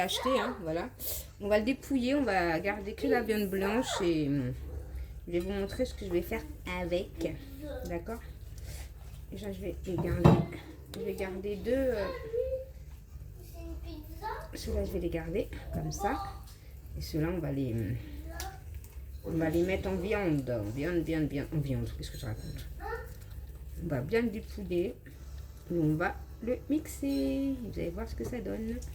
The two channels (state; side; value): identical; both; correlation 1.00